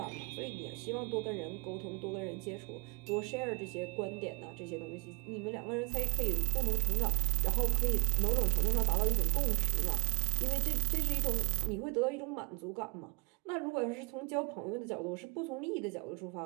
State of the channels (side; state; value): left; quieter; 30.1 dB